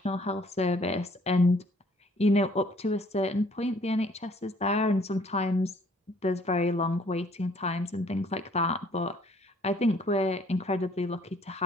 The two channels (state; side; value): normal; both; correlation 0.60